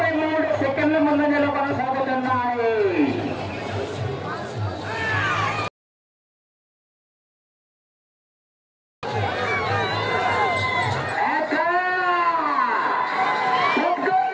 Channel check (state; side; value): identical; both; correlation 1.00